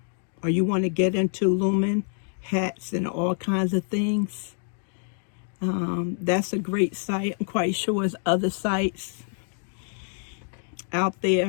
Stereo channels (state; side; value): silent; right; 61 dB below the other